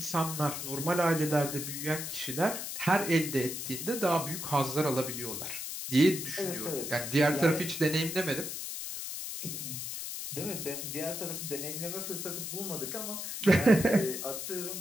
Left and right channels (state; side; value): noise; left; hiss, 6 dB below the sound